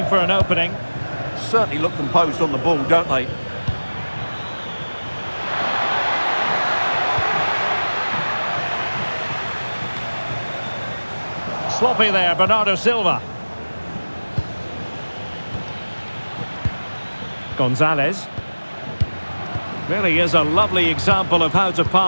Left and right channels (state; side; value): inverted; both; correlation -1.00